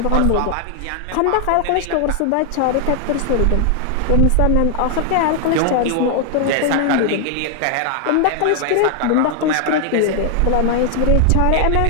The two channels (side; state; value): both; different; correlation 0.00